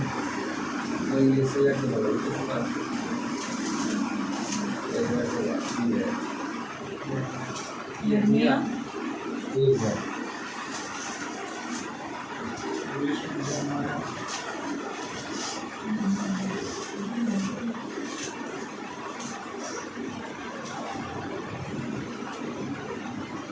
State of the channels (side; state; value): both; identical; correlation 1.00